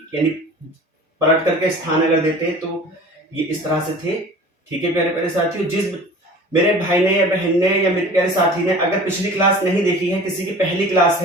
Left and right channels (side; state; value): both; normal; correlation 0.42